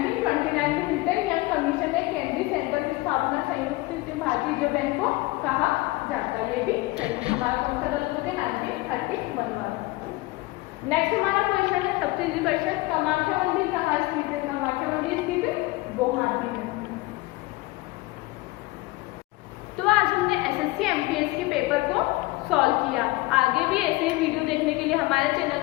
में हिल्टन यंग कमीशन ने केंद्रीय सेंटर की स्थापना संयुक्त भारतीय रिजर्व बैंक को कहा जाता है, ये भी सही। हमारा कौन सा गलत होता है? 1931 वाला। नेक्स्ट हमारा क्वेश्चन है, सबसे इजी क्वेश्चन, कामाख्या मंदिर कहाँ स्थित है? कामाख्या मंदिर स्थित है गुवाहाटी में। तो आज हमने एसएससी एमटीएस के पेपर को सॉल्व किया। आगे भी ऐसे वीडियो देखने के लिए हमारे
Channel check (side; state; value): right; quieter; 21.0 dB